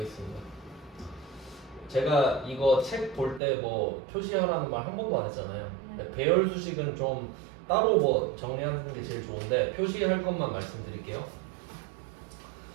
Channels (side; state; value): left; drops out; at 3.4 s